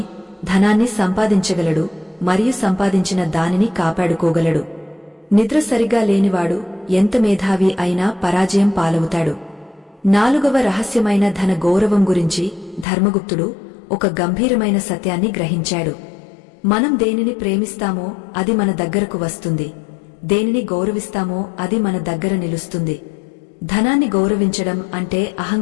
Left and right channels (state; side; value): drops out; right; at 12.9 s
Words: ధనాన్ని సంపాదించగలడు మరియు సంపాదించిన దానిని కాపాడుకోగలడు. నిద్ర సరిగా లేనివాడు ఎంత మేధావి అయినా పరాజయం పాలవుతాడు. 4వ రహస్యమైన ధన గౌరవం గురించి ధర్మగుప్తుడు ఒక గంభీరమైన సత్యాన్ని గ్రహించాడు. మనం దేనిని ప్రేమిస్తామో అది మన దగ్గరకు వస్తుంది, దేనిని గౌరవిస్తామో అది మన దగ్గర నిలుస్తుంది. ధనాన్ని గౌరవించడం అంటే